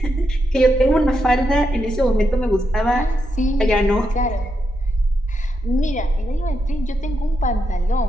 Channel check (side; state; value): both; normal; correlation 0.83